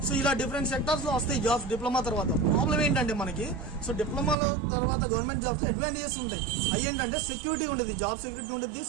సో ఇలా డిఫరెంట్ సెక్టార్స్లో వస్తాయి జాబ్స్ డిప్లొమా తర్వాత. ప్రాబ్లం ఏంటంటే మనకి సో డిప్లొమాలో తర్వాత గవర్నమెంట్ జాబ్స్ అడ్వాంటేజెస్ ఉంటాయి. అవి ఏంటంటే సెక్యూరిటీ ఉంటుంది, జాబ్ సెక్యూరిటీ ఉంటుంది,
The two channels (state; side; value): drops out; left; at 4.4 s